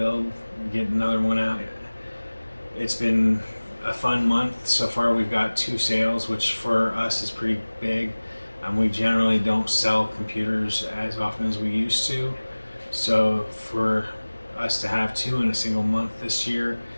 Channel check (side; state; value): both; inverted; correlation -1.00